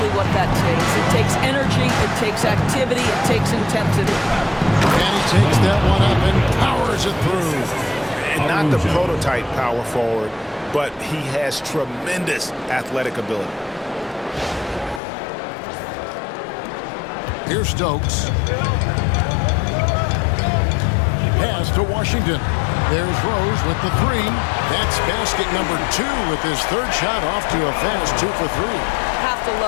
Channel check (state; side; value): drops out; right; at 15.0 s